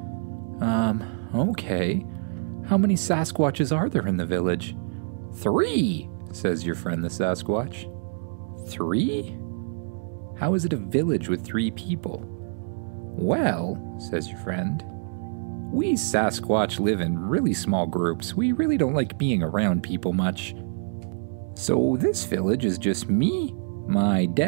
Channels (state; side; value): silent; left; digital silence